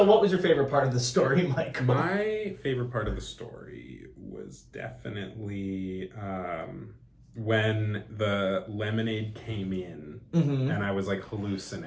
what was your favorite part of the story, Michael? My favorite part of the story was definitely when the lemonade came in and I was like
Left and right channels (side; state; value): both; identical; correlation 1.00